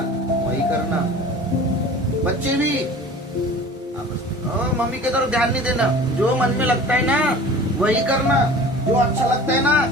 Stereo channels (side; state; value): both; normal; correlation 0.42